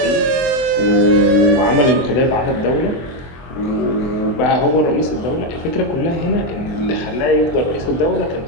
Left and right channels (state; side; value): late; right; 23 ms